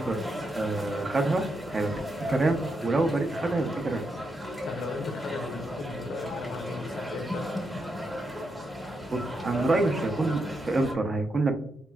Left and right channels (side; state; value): both; normal; correlation 0.83